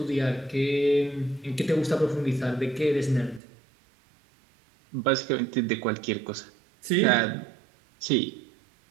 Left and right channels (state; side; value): drops out; left; at 3.4 s